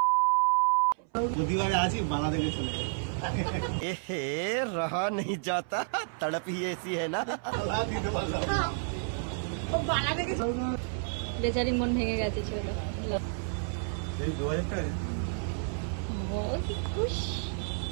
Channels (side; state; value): left; silent; 57 dB below the other